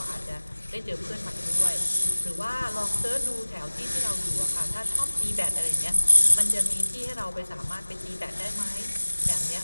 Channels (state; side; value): inverted; both; correlation -1.00